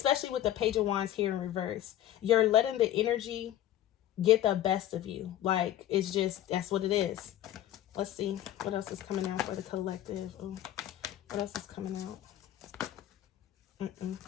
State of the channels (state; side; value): quieter; right; 12.6 dB